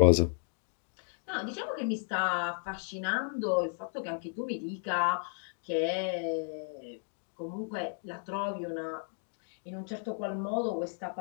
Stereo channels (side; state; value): right; silent; 55 dB below the other